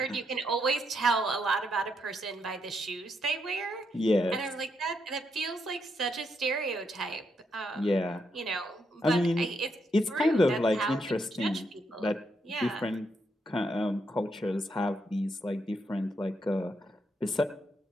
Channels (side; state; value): both; normal; correlation 0.79